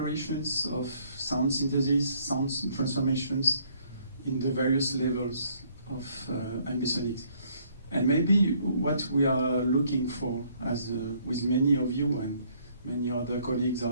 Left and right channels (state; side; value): inverted; both; correlation -0.65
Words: of sound synthesis, sound transformations in the various levels of ambisonics. And maybe what we are looking for, as with many of you and many other colleagues,